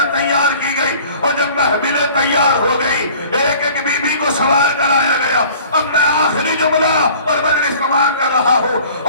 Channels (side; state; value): both; inverted; correlation -0.49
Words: تیار کی گئی, اور جب محفلیں تیار ہو گئی ایک ایک بی بی کو سوار کرایا گیا. اب میں آخری جملہ اور مجلس تمام کر رہا ہوں.